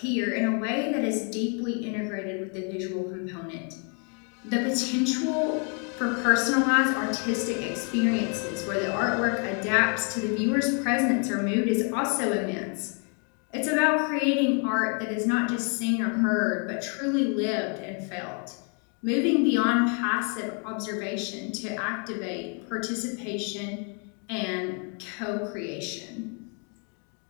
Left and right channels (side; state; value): right; quieter; 39.3 dB